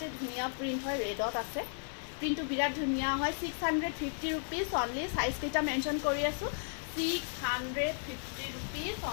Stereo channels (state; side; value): silent; right; 55 dB below the other